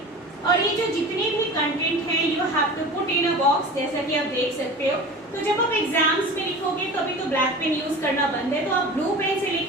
और ये जो जितने भी कंटेंट हैं you have to put in a box, जैसा कि आप देख सकते हो। तो जब आप एग्जाम्स में लिखोगे तो अभी तो ब्लैक पेन यूज करना बंद है, तो आप ब्लू पेन से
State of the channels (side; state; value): both; normal; correlation 0.36